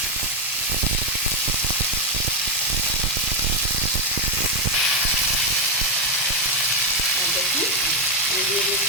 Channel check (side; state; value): both; normal; correlation 0.03